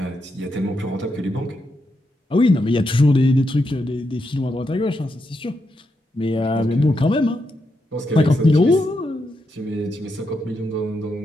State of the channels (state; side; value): normal; both; correlation 0.83